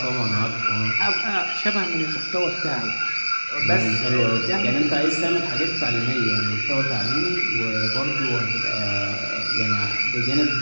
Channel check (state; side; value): inverted; both; correlation -1.00